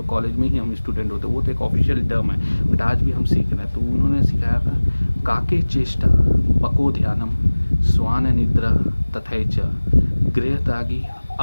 कॉलेज में ही हम स्टूडेंट होते हैं, वो तो एक ऑफिशियल टर्म है, बट आज भी हम सीख रहे हैं। तो उन्होंने सिखाया था काके चेष्टा पको ध्यानम स्वान निद्रा तथैच गृहतागी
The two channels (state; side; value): inverted; both; correlation -1.00